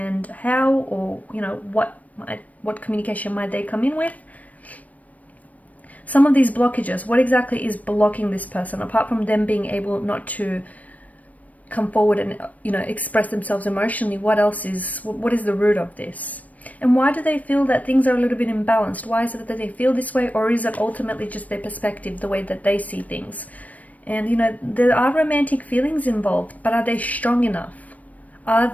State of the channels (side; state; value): right; late; 0.071 ms